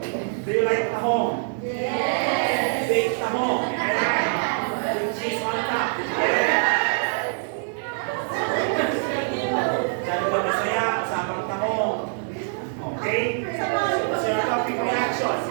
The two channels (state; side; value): silent; left; digital silence